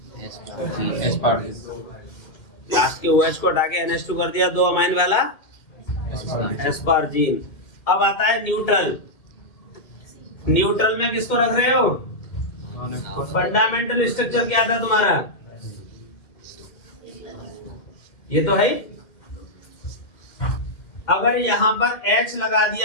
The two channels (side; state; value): right; late; 2.3 ms